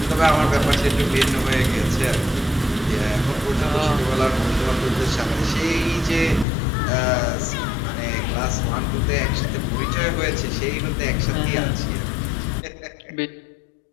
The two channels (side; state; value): right; drops out; at 6.5 s